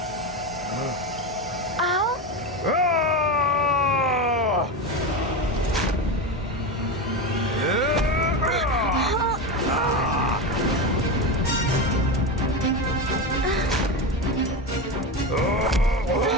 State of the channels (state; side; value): normal; both; correlation 0.18